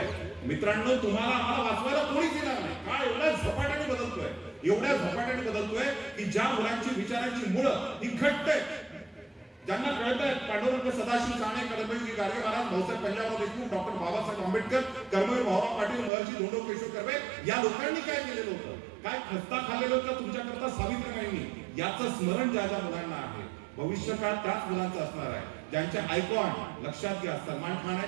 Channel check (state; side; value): drops out; left; at 16.1 s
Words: मित्रांनो, तुम्हाला आम्हाला वाचवायला कोणीच येणार नाही. काळ एवढ्या झपाट्याने बदलतोय की ज्या मुलांची विचारांची मुळं ही घट्ट आहेत, ज्यांना कळत आहे पांडुरंग सदाशिव साने, कर्मवीर गाडगे महाराज, भाऊसाहेब पंजाबराव देशमुख, डॉक्टर बाबासाहेब आंबेडकर, कर्मवीर भाऊराव पाटील, महर्षी धोंडो केशव कर्वे या लोकांनी काय केलेलं होतं, काय खस्ता खाल्लेलं होतं तुमच्याकरता सावित्रीबाईंनी, याचं स्मरण ज्या ज्या मुलांना आहे भविष्यकाळ त्याच मुलांचं असणार आहे. ज्यांच्या आयकॉन लक्षात घ्या सलमान खान